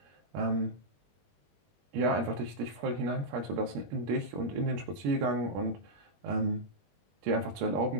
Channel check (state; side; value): late; left; 21 ms